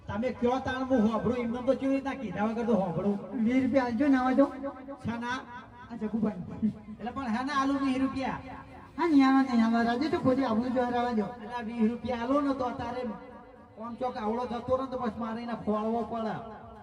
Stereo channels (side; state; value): both; identical; correlation 1.00